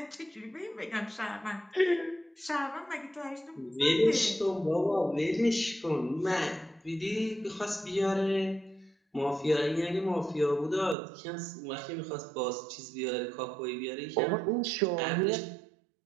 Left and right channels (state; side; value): drops out; left; at 11.0 s